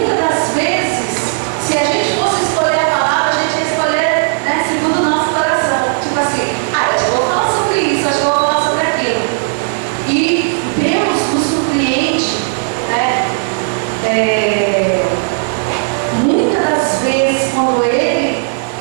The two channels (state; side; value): silent; left; 70 dB below the other